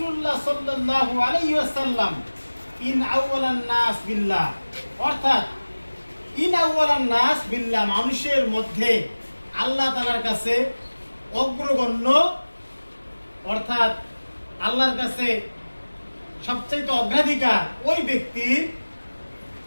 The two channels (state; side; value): inverted; both; correlation -1.00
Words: الله صلى الله عليه وسلم ইন আউওয়ালান নাস বিল্লাহ, অর্থাৎ ইন আউওয়ালান নাস বিল্লাহ, মানুষের মধ্যে আল্লাহ তাআলার কাছে অগ্রগণ্য, অর্থাৎ আল্লাহর কাছে সবচেয়ে অগ্রাধিকার ওই ব্যক্তির